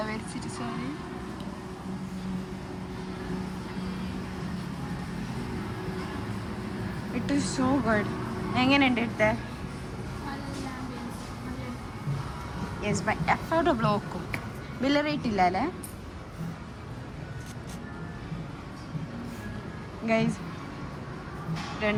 വരച്ചിട്ട് sorry. It is so good. എങ്ങനെയുണ്ട് ഇട്ടേ? യെസ് ബൈ അഫോർഡബിൾ നോക്കും. ബില്ല് റേറ്റ് ഇല്ല അല്ലേ ഗൈസ്?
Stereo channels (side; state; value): both; identical; correlation 1.00